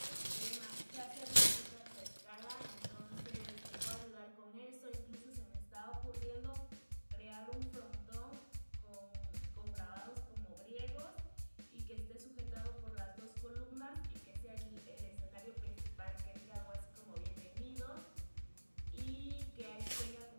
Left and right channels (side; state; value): both; inverted; correlation -1.00